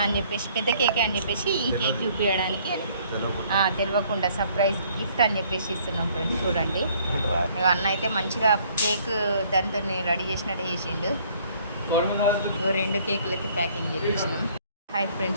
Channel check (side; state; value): both; inverted; correlation -0.60